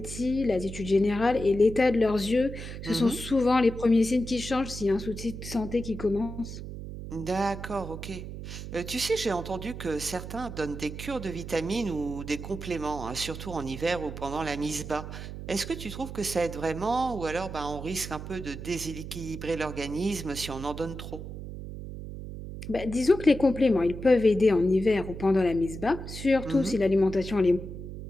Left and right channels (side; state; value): right; noise; hum, 9 dB below the sound